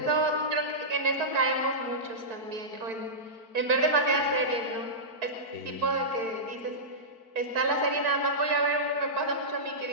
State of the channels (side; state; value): left; late; 4.5 ms